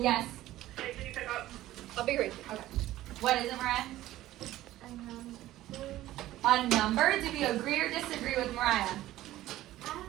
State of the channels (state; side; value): quieter; left; 15.0 dB